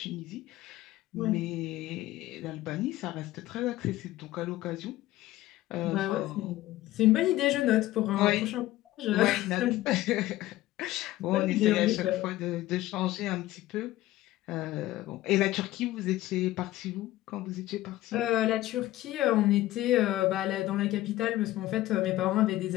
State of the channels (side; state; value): right; quieter; 15.9 dB